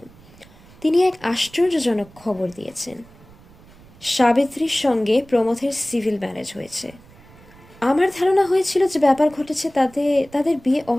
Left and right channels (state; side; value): noise; right; rumble, 24 dB below the sound